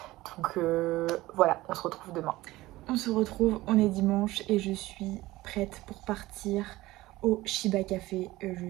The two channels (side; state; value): left; quieter; 18.2 dB